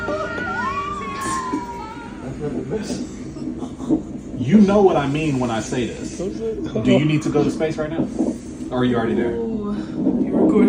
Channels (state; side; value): identical; both; correlation 1.00